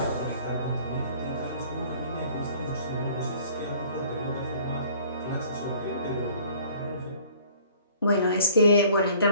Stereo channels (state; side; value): inverted; both; correlation -0.53